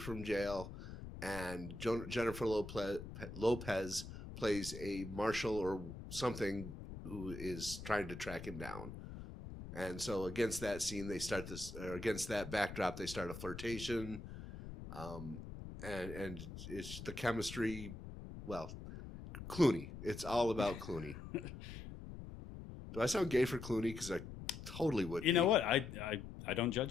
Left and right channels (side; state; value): left; noise; rumble, 11 dB below the sound